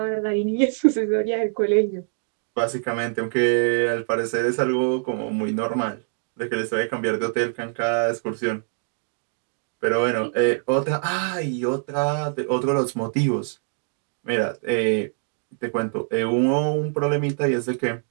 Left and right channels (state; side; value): silent; left; digital silence